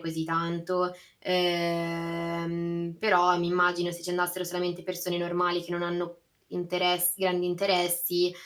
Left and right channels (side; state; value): both; identical; correlation 1.00